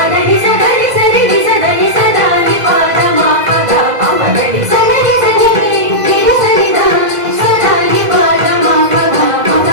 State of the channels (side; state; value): left; late; 2.0 ms